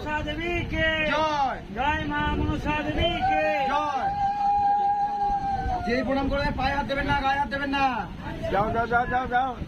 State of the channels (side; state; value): both; identical; correlation 1.00